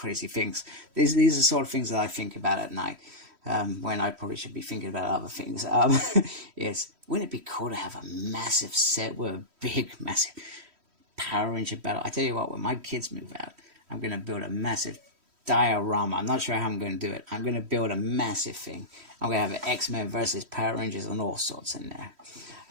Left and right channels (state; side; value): late; left; 3.1 ms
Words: things. These are the sort of things that I think about at night. When I probably should be thinking about other things. Yes, wouldn't it be cool to have a massive set with a big, massive Power Ranger battle? I tell you what, when my kids move out, I'm going to build a massive diorama. I'm not sure how I'm going to do it. I'm going to build a massive thing. I'm going to have an X-Men versus Power Rangers and all sorts in